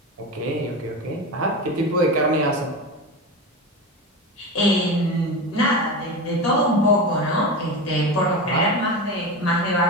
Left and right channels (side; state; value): both; normal; correlation 0.23